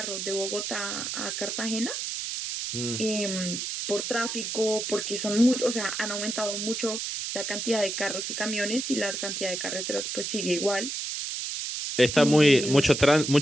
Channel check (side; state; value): right; noise; hiss, 4 dB below the sound